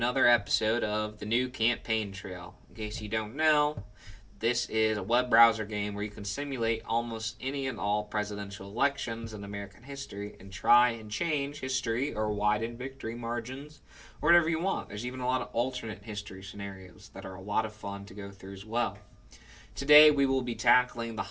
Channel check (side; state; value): both; identical; correlation 1.00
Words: episode of the new campaign trail. In case you don't know, this is a web browser game where you can simulate almost any and all presidential elections in American history and try and change history or widen victory margins or whatever you want. There's even a lot of alternate history scenarios that are a lot of fun to go through as well. Today we will be tackling the